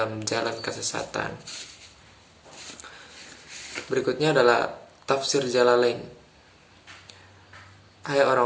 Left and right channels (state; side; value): identical; both; correlation 1.00